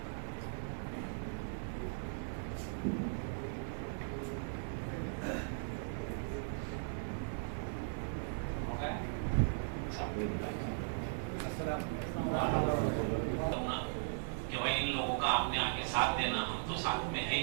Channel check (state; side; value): silent; left; 52 dB below the other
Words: कि भाई इन लोगों का आपने आगे साथ देना, हम तो साथ में है